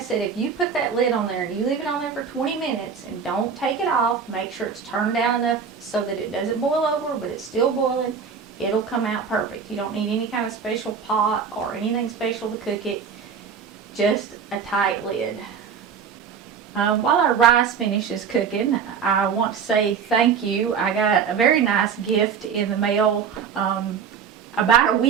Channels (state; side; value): quieter; left; 6.7 dB